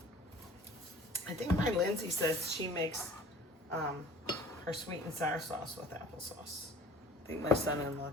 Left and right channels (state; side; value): normal; both; correlation 0.48